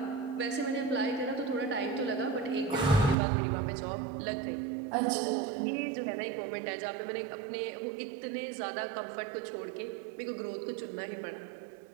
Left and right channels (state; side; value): drops out; left; at 3.2 s